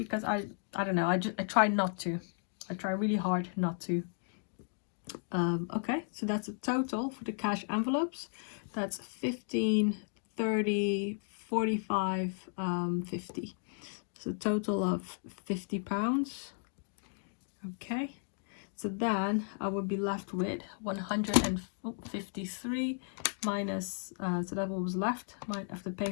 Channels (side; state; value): right; silent; 55 dB below the other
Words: I don't know, I try not to. I try really hard not to. Okay, so that's a total for the cash envelopes. That's 15, 30, 45, 50. So total of £50. Okay, so then I would be left with 153 minus, so that what was left after